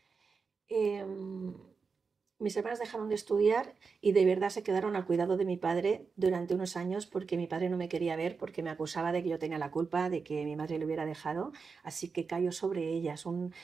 Em, Mis hermanas dejaron de estudiar y de verdad se quedaron al cuidado de mi padre durante unos años porque mi padre no me quería ver porque me acusaba de que yo tenía la culpa de que mi madre le hubiera dejado, así que cayó sobre ellas un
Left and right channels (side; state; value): left; quieter; 5.1 dB